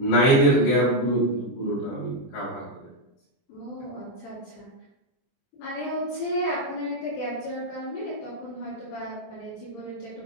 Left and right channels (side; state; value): right; late; 23 ms